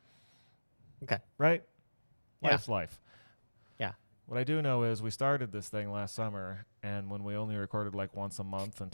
Okay. Right? Yeah. Life's life. Yeah. What I do know is we started this thing last summer, and when we only recorded like once a month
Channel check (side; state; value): both; inverted; correlation -1.00